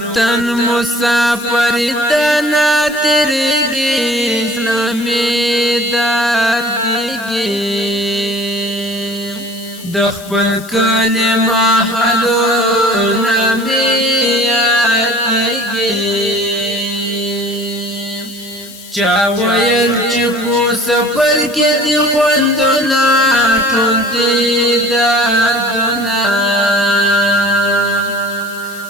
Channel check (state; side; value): noise; left; hiss, 18 dB below the sound